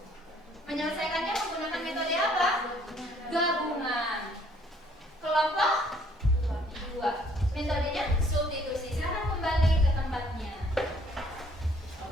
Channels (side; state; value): both; normal; correlation 0.61